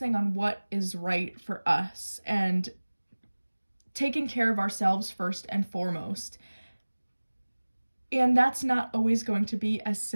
on what is right for us and taking care of ourselves first and foremost. And that's not always going to be as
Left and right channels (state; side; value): inverted; both; correlation -1.00